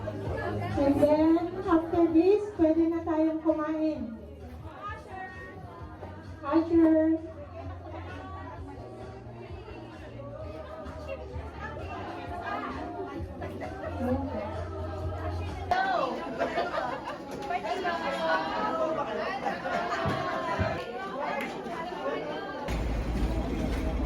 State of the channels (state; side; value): identical; both; correlation 1.00